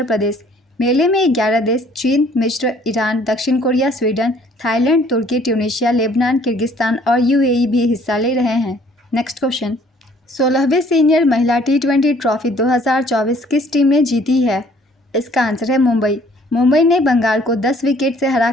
प्रदेश। मेले में 11 देश चीन, मिस्र, ईरान, दक्षिण कोरिया, स्वीडन, थाईलैंड, तुर्की, ट्यूनीशिया, लेबनान, किर्गिस्तान और UAE भी हिस्सा ले रहे हैं। नेक्स्ट क्वेश्चन, 16वीं सीनियर महिला T20 ट्रॉफी 2024 किस टीम ने जीती है? इसका आंसर है मुंबई। मुंबई ने बंगाल को 10 विकेट से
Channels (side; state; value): both; normal; correlation 0.59